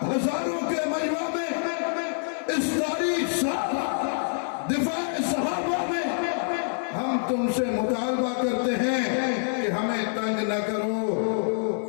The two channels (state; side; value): silent; right; digital silence